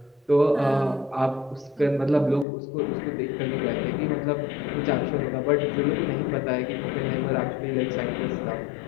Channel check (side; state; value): right; drops out; at 2.5 s